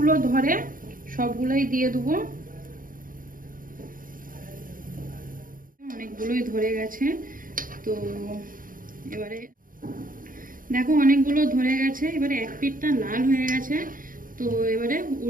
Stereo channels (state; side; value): late; left; 0.40 ms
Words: ধরে সবগুলোই দিয়ে দেবো। অনেকগুলোই ধরে গেছে। তো এবারে দেখো অনেকগুলো ধরে গেছে। এবারে এক পিঠটা লাল হয়ে গেছে, তো এবারে